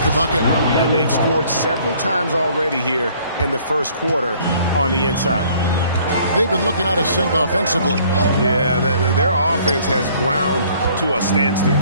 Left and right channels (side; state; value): both; inverted; correlation -0.58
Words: the bucket. And they've scored several times already here in the first quarter on the inside. They've been looking out of sync offensively. Yeah, their offense has ground to a standstill.